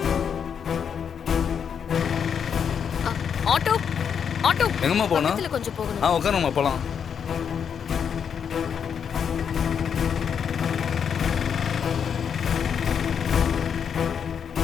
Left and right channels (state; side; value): quieter; right; 7.4 dB